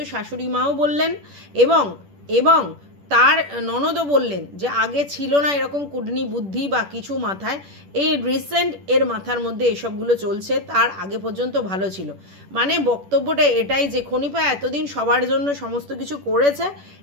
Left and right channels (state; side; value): late; left; 10 ms